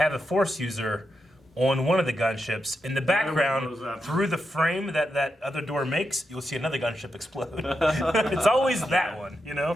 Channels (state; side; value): normal; both; correlation 0.86